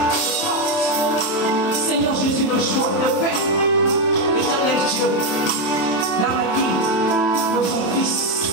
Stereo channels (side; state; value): right; late; 27 ms